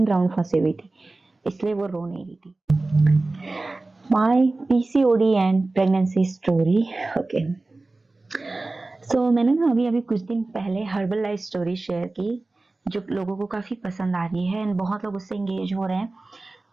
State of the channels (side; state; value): left; quieter; 3.2 dB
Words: फंसी हुई थी, इसलिए वो रो नहीं रही थी। My PCOD and pregnancy story. Okay, so मैंने ना अभी कुछ दिन पहले हर्बल लाइफ स्टोरी शेयर की, जो लोगों को काफ़ी पसंद आ रही है एंड बहुत लोग उससे इंगेज हो रहे हैं।